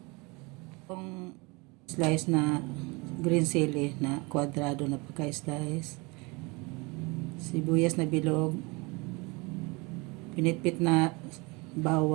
Itong slice na green chili na kwadrado na pagka-slice, sibuyas na bilog, pinitpit na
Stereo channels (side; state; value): left; quieter; 27.1 dB